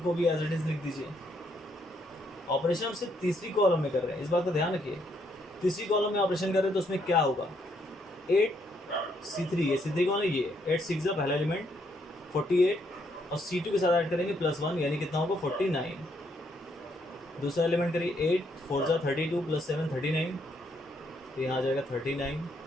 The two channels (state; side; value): normal; both; correlation 0.73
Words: भी एज इट इज़ लिख दीजिए। ऑपरेशन हम सिर्फ तीसरी कॉलम में कर रहे हैं, इस बात का ध्यान रखिए। तीसरी कॉलम में ऑपरेशन कर रहे हैं तो उसमें क्या होगा, 8 C3, ये C3 कौन है, ये 8 6 का पहला एलिमेंट 48, और C2 के साथ ऐड करेंगे +1, यानी कितना होगा 49। दूसरा एलिमेंट करिए, 8 4 32 + 7 39, तो यहाँ आ जाएगा 39।